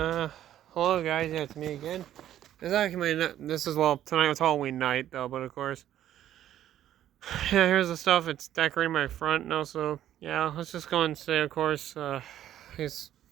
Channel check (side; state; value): left; quieter; 11.8 dB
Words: Hello, guys. Yeah, it's me again. This is actually this is, well, tonight was Halloween night, though, but of course. Yeah, here's the stuff. It's decorating my front now, so yeah, let's just go and say, of course, he's,